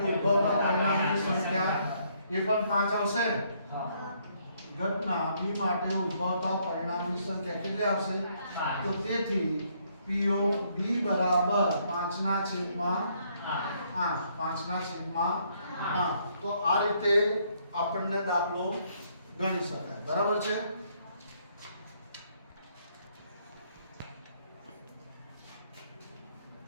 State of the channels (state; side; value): inverted; both; correlation -0.69